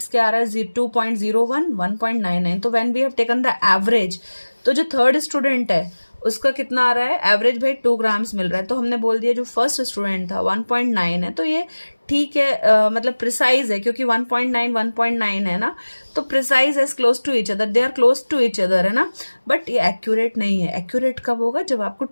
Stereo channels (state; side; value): inverted; both; correlation -1.00